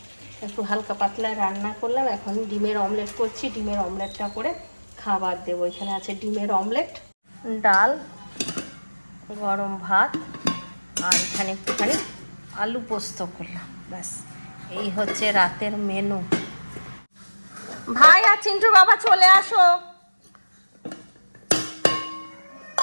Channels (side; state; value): both; inverted; correlation -1.00